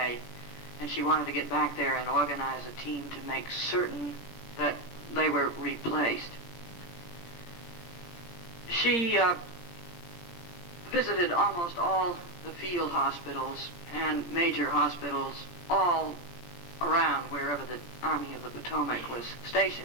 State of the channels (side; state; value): right; late; 17 ms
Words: and she wanted to get back there and organize a team to make certain that they were replaced. She visited almost all the field hospitals and major hospitals all around wherever the Army of the Potomac was